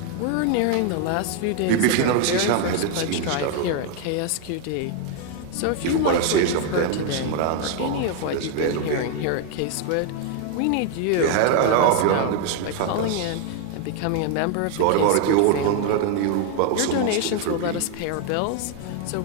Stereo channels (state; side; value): different; both; correlation 0.01